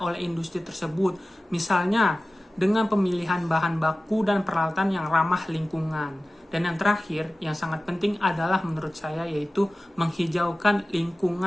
oleh industri tersebut, misalnya dengan pemilihan bahan baku dan peralatan yang ramah lingkungan. Dan yang terakhir, yang sangat penting adalah menurut saya, yaitu menghijaukan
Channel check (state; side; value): normal; both; correlation 0.96